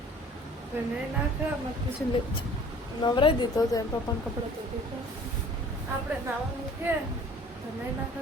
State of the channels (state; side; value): normal; both; correlation 0.50